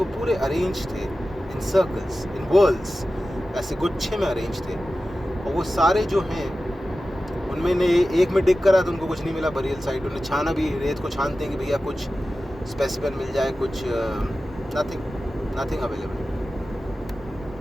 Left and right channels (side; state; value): both; normal; correlation 0.94